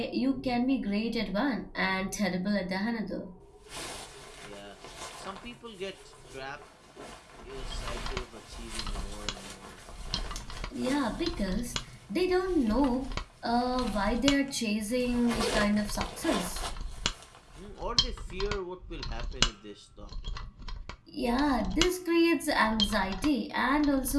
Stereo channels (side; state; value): both; identical; correlation 1.00